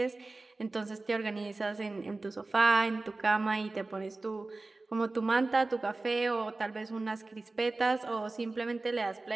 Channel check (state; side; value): quieter; left; 3.3 dB